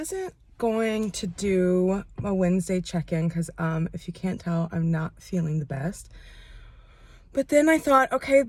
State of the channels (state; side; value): identical; both; correlation 1.00